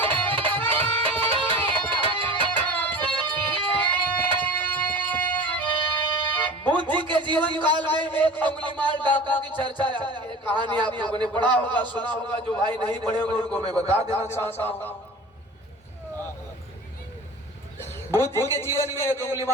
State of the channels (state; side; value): normal; both; correlation 0.37